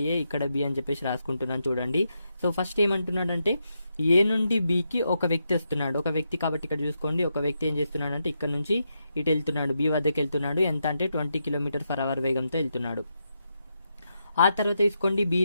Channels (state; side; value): inverted; both; correlation -0.83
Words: ఏ ఇక్కడ బి అని చెప్పేసి రాసుకుంటున్నాను చూడండి. సో ఫస్ట్ ఏమంటున్నాడు అంటే ఏ నుండి బికి ఒక వ్యక్తి వస్తున్నాడు. ఒక వ్యక్తి కాబట్టి ఇక్కడ చూసుకోండి, ఒక వ్యక్తి ఏం చేస్తున్నాడు అంటే ఇక్కడ నుంచి ఇటు వెళ్తున్నాడు, బి వద్దకి వెళ్తున్నాడు. ఎంత అంటే 20 km/h వేగంతో వెళ్తున్నాడు. ఆ తర్వాత తీసుకోండి బి